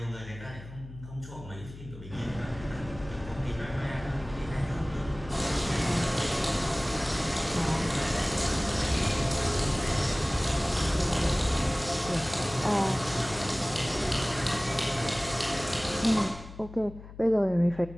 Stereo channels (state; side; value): noise; left; hum, 15 dB below the sound